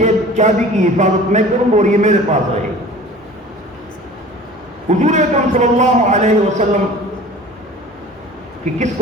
چابی کی حفاظت میں کروں اور یہ میرے پاس رہے۔ حضور اکرم صلی اللہ علیہ وسلم کہ کس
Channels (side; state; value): both; normal; correlation 0.43